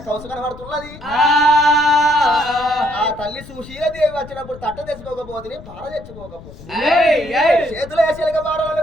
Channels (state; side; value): noise; left; rumble, 17 dB below the sound